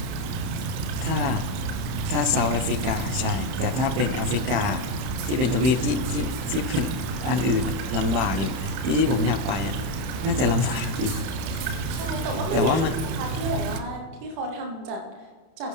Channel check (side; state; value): left; late; 31 ms